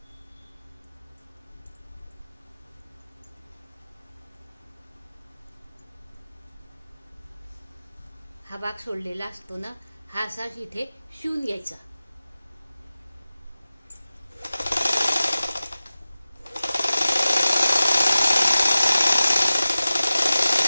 हा भाग सोडलेला असतो ना, हा असा इथे शिवून घ्यायचा.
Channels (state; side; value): inverted; both; correlation -0.97